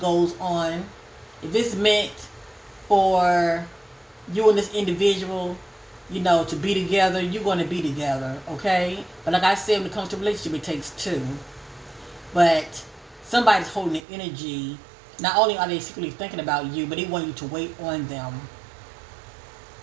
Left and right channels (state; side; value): drops out; left; at 14.0 s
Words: on. If it's meant for you and this individual, to be together, you're going to be together, okay? But like I said, when it comes to relationship, it takes two. But somebody's holding the energy. Not only are they secretly thinking about you, but they want you to wait on them.